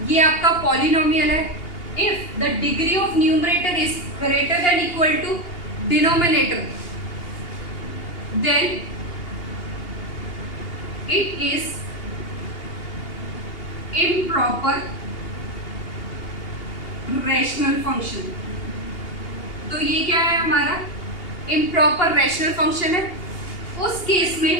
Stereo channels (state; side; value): late; right; 2.8 ms